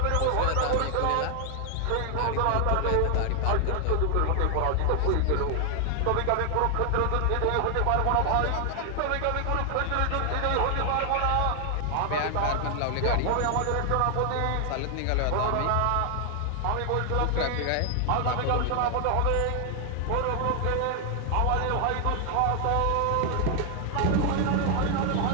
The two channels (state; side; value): different; both; correlation 0.00